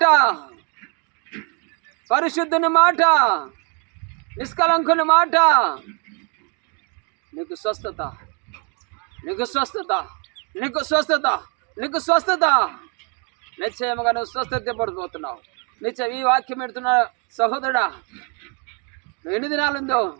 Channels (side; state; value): left; quieter; 36.0 dB